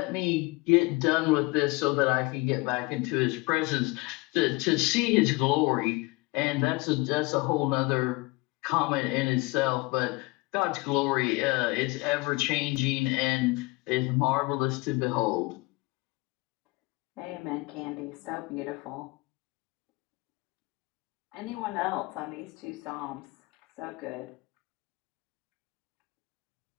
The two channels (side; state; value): right; quieter; 24.6 dB